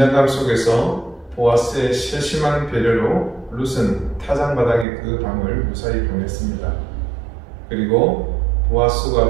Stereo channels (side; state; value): left; drops out; at 4.9 s